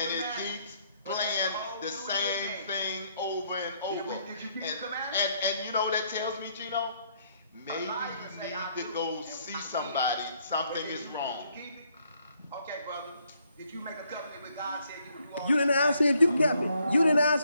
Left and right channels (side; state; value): both; inverted; correlation -0.70